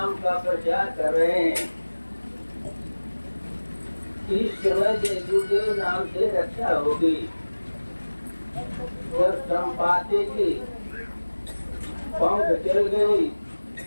का प्रचार कर रहे हैं। इस समय जय गुरुदेव नाम से रक्षा होगी। जब संपाते की पंख चल गई,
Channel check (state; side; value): inverted; both; correlation -1.00